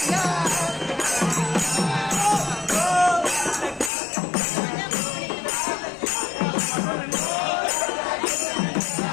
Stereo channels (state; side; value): drops out; right; at 3.9 s